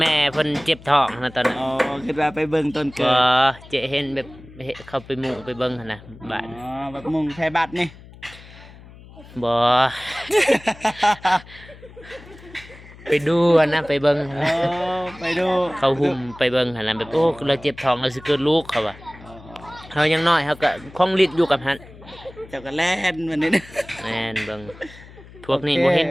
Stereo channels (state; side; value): noise; left; hum, 20 dB below the sound